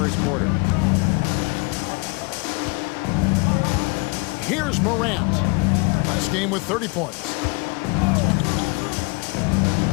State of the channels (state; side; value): quieter; right; 29.7 dB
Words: quarter. Here's Morant. Last game with 30 points.